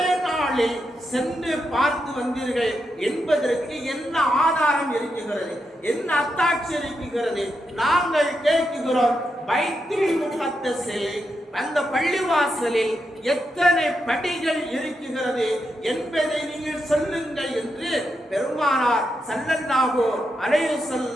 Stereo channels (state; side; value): normal; both; correlation 0.84